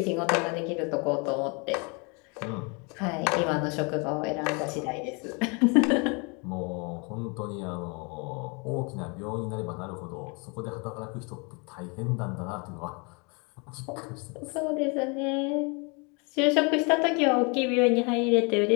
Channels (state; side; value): quieter; right; 32.1 dB